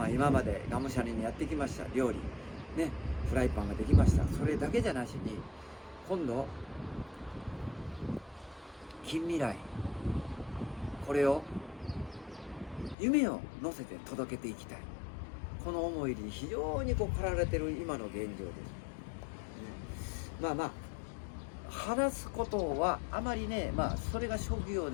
今までがむしゃらにやってきました料理ね、フライパンができました。それだけじゃなしに、今度近未来、これを夢を乗せて届けていきたい、この思いに非常に駆られている今の現状です、話すことはあまりね、それが職業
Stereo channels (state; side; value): drops out; right; at 13.0 s